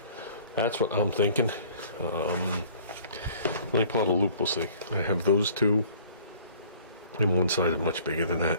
That's what I'm thinking. Let me pull out a loop, we'll see. I have those two, and one side is much bigger than that.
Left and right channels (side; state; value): both; inverted; correlation -0.53